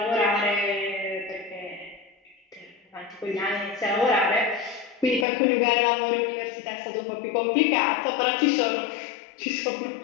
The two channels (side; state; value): right; drops out; at 5.2 s